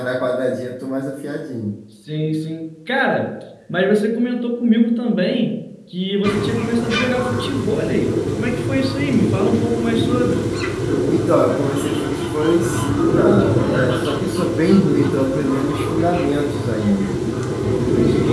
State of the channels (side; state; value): both; identical; correlation 1.00